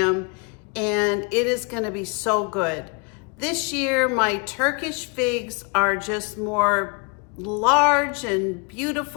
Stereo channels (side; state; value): right; quieter; 31.9 dB